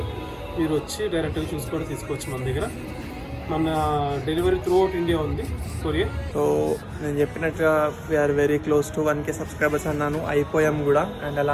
మీరు వచ్చి డైరెక్ట్గా చూసి కూడా తీసుకోవచ్చు మన దగ్గర. మన డెలివరీ త్రూ అవుట్ ఇండియా ఉంది, కొరియర్. సో నేను చెప్పినట్టుగా we're very close to 1K subscribers అన్నాను, అయిపోయాం కూడా. అండ్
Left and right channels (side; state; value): both; identical; correlation 1.00